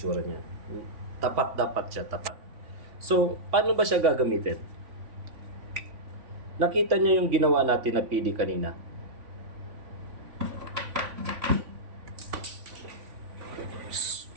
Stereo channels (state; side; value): late; left; 3.5 ms